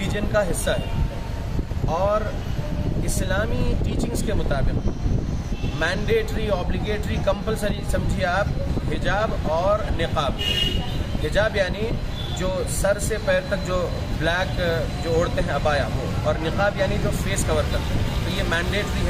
का हिस्सा है, और इस्लामी टीचिंग्स के मुताबिक मैंडेटरी, ऑब्लिगेटरी, कंपलसरी समझिए आप हिजाब और निकाब। हिजाब यानी जो सर से पैर तक जो ब्लैक जो ओढ़ते हैं अबाया वो, और निकाब यानी जो फेस कवर करते हैं। तो ये मैंडेटरी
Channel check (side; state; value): both; identical; correlation 1.00